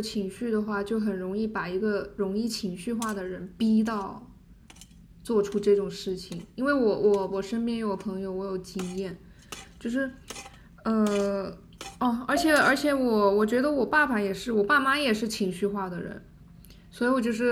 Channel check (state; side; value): identical; both; correlation 1.00